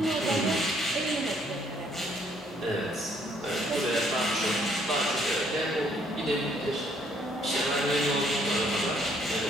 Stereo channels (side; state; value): both; normal; correlation 0.66